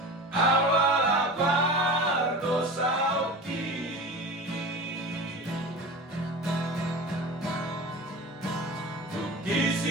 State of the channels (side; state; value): both; normal; correlation 0.32